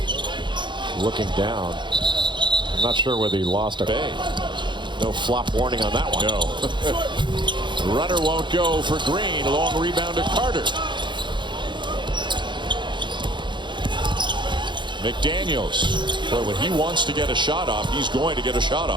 looking down. I'm not sure whether he lost a Bay. No flop warning on that one. No. Runner won't go for Green. Long rebound to Carter. McDaniels. But when he wants to get a shot off, he's going to get a shot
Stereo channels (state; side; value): late; left; 0.23 ms